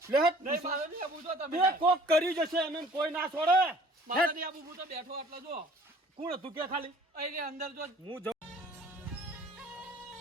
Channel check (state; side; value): normal; both; correlation 0.53